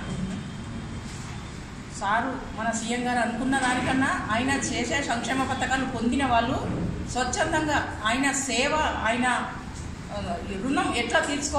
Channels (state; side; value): identical; both; correlation 1.00